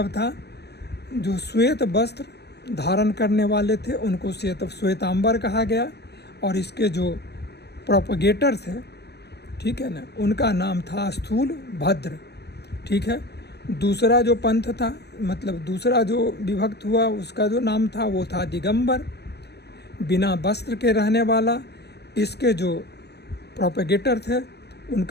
था जो श्वेत वस्त्र धारण करने वाले थे उनको श्वेतांबर कहा गया। और इसके जो प्रोपगेटर थे, ठीक है ना, उनका नाम था स्थूल भद्र, ठीक है। दूसरा जो पंथ था, मतलब दूसरा जो विभक्त हुआ उसका जो नाम था वो था दिगंबर, बिना वस्त्र के रहने वाला। इसके जो प्रोपगेटर थे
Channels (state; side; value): late; right; 0.48 ms